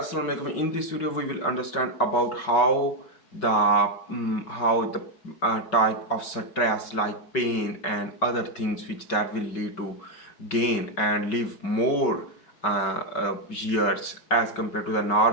alaikum. In this video, we will understand about how the type of stress like pain and other things which that will lead to gain and live more years as compared to the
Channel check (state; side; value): late; right; 5.3 ms